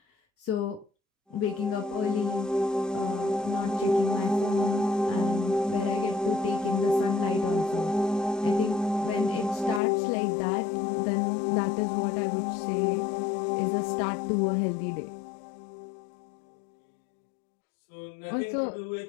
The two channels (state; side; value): drops out; right; at 9.8 s